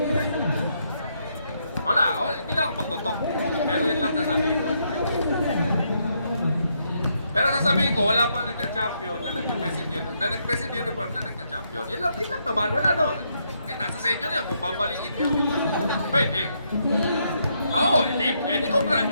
Wala, hindi na ako magtutok. Pero yun lang sasabihin ko. Pero sasabihin ko, wala pang nagka-champion na nag-best in uniform, na nagka-champion. Yun lang naman, wala naman. Eh, nasa sa inyo na yun, kung babalikin nyo. Pwede. Oo, edi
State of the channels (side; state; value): both; inverted; correlation -0.76